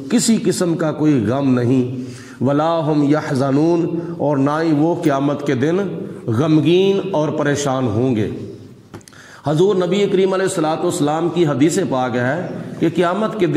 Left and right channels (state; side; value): identical; both; correlation 1.00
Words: کسی قسم کا کوئی غم نہیں، ولا ہم یحزنون، اور نہ ہی وہ قیامت کے دن غمگین اور پریشان ہوں گے۔ حضور نبی کریم علیہ الصلوۃ والسلام کی حدیث پاک ہے کہ قیامت کے